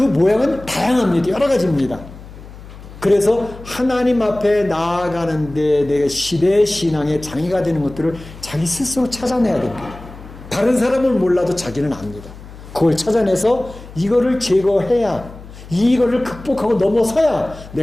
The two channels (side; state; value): left; noise; hum, 17 dB below the sound